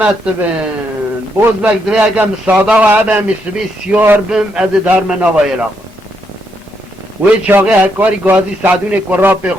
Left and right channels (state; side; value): normal; both; correlation 0.77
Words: بن بوز بگ دوی اگه مساده و عبه مسبی سیار بم از در مناوای لاغ وی چاقه هکاری گازی سعدون کرا پی